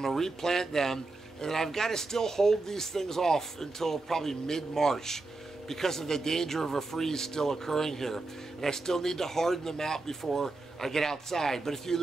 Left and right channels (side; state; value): left; quieter; 3.3 dB